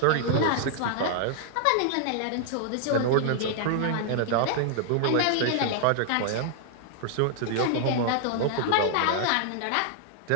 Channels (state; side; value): different; both; correlation 0.00